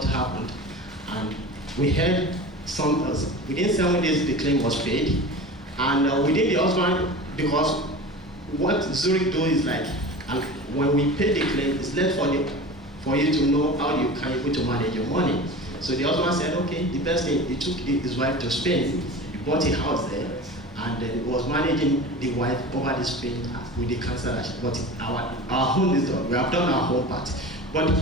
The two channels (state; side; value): normal; both; correlation 0.34